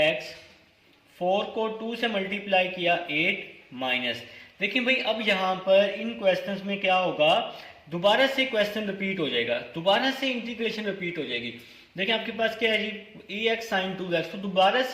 4 को 2 से मल्टीप्लाई किया 8, माइनस। देखिए भाई अब यहाँ पर इन क्वेश्चंस में क्या होगा, दोबारा से क्वेश्चन रिपीट हो जाएगा, दोबारा से इंटीग्रेशन रिपीट हो जाएगी। देखिए आपके पास क्या है जी, EX sin 2x, तो दोबारा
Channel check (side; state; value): both; identical; correlation 1.00